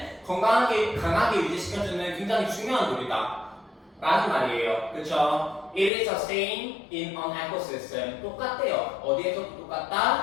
건강하게 강하게 유지시켜주는 굉장히 중요한 돌이다 라는 말이에요. 그쵸? It is the same in an ecosystem. 똑같대요. 어디에서도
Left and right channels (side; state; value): right; drops out; at 5.9 s